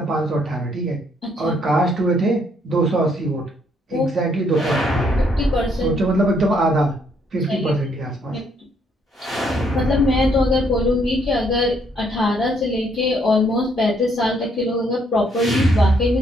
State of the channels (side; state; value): both; normal; correlation 0.69